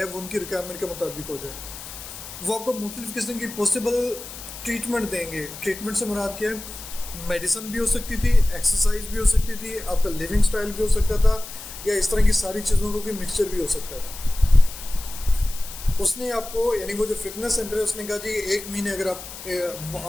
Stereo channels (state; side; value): noise; left; hiss, 12 dB below the sound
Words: वो उनकी रिक्वायरमेंट के मुताबिक हो जाए। वो आपको मुख्तलिफ किस्म की पॉसिबल ट्रीटमेंट देंगे। ट्रीटमेंट से मुराद क्या है, मेडिसिन भी हो सकती थी, एक्सरसाइज भी हो सकती थी, आपका लिविंग स्टाइल भी हो सकता था, या इस तरह की सारी चीज़ों का कोई मिक्सचर भी हो सकता था। उसने आपको, यानी वो जो फिटनेस सेंटर है, उसने कहा जी 1 महीने, अगर आप